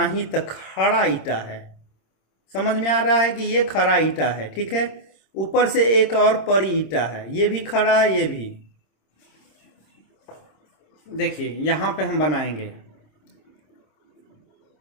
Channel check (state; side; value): late; right; 26 ms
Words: ही तक खड़ा ईटा है, समझ में आ रहा है कि ये खड़ा ईटा है, ठीक है। ऊपर से एक और परी ईटा है, ये भी खड़ा है, ये भी। देखिए यहां पे हम बनाएंगे,